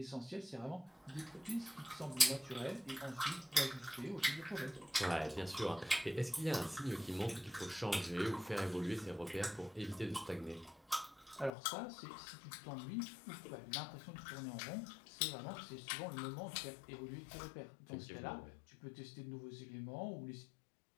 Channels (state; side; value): drops out; right; at 11.5 s